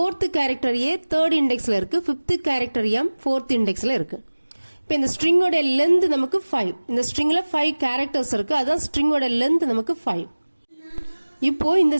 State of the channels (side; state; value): both; inverted; correlation -1.00